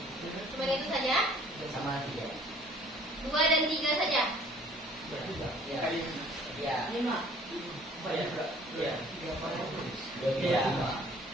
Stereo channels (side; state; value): both; normal; correlation 0.54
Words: Cuma itu saja? Sama tiga. 2 dan 3 saja? Ya. Ya. Ya. Ya.